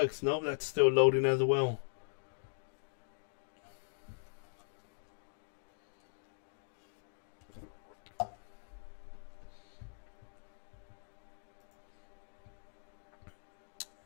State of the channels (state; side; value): silent; right; digital silence